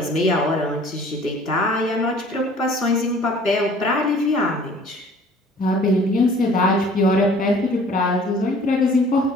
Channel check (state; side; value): normal; both; correlation 0.52